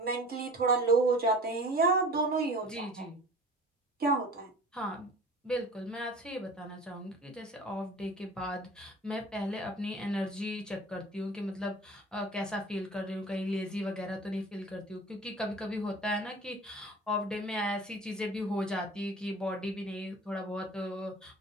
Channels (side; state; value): both; normal; correlation 0.42